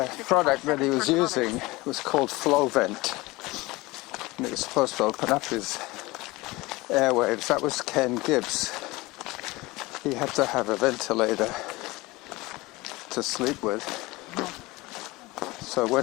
65 product that he seconds was per kilometer. using was called Flow Vent. And it was supposed to open up his airwaves. That was Ken Gibbs. He had to have a ventilator to sleep with. So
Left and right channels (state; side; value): quieter; right; 21.5 dB